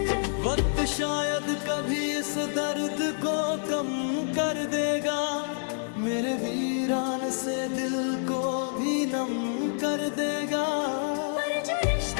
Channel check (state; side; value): silent; right; 58 dB below the other